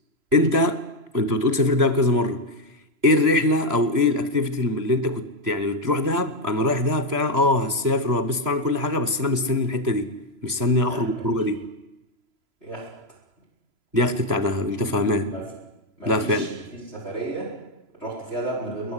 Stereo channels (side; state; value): left; late; 3.0 ms